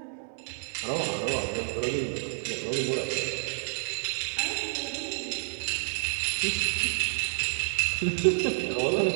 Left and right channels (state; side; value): silent; left; digital silence